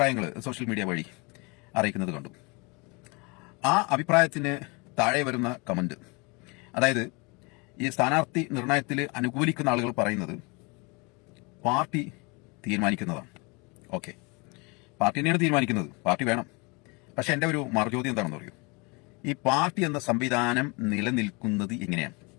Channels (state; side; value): quieter; right; 29.0 dB